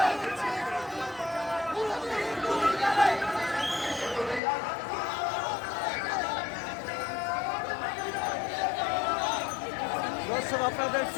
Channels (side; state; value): right; drops out; at 4.4 s